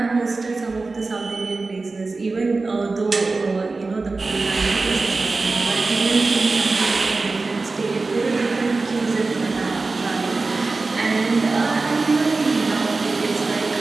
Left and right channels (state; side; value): quieter; left; 3.7 dB